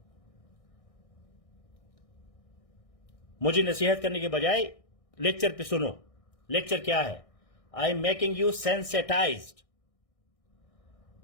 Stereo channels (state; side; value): late; right; 1.6 ms